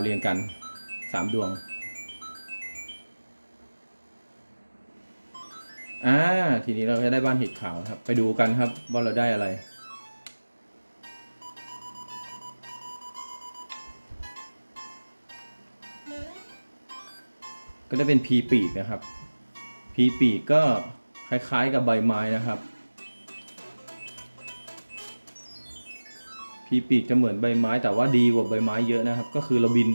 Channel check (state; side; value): inverted; both; correlation -1.00